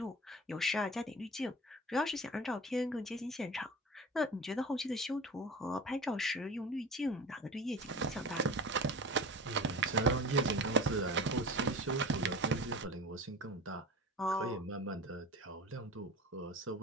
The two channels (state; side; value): normal; both; correlation 0.36